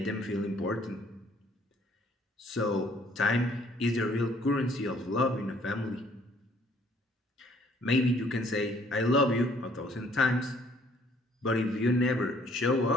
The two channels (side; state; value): both; normal; correlation 0.61